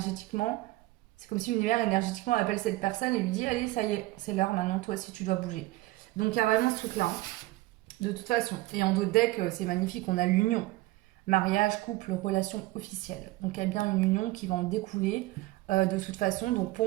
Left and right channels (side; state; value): left; quieter; 19.1 dB